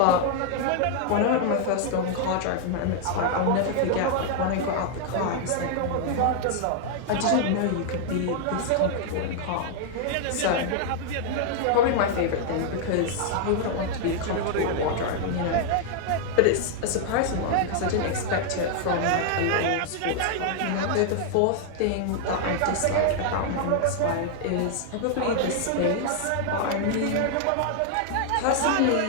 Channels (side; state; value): both; different; correlation 0.00